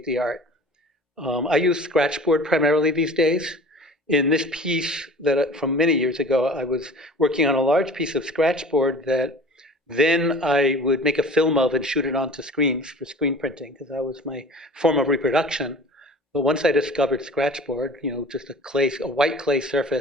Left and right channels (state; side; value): normal; both; correlation 0.42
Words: the art. I use Scratchboard primarily these days. In this piece that from many years ago, I was working on a large piece of Scratchboard that then I would make a film of and shoot it onto screens for screen printing, because that was my form of reproduction. But once I discovered Scratchboard, just a white clay